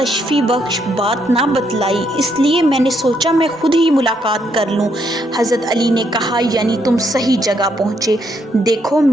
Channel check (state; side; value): normal; both; correlation 0.74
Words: بخش بات نہ بتلائی، اس لیے میں نے سوچا میں خود ہی ملاقات کر لوں۔ حضرت علی نے کہا یعنی تم صحیح جگہ پہنچے، دیکھو